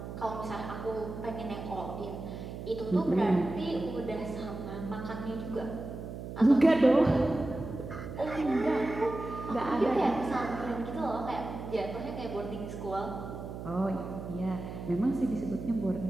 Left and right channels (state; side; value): noise; right; hum, 9 dB below the sound